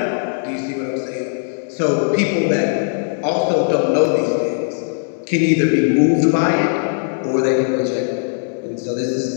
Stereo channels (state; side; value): silent; right; digital silence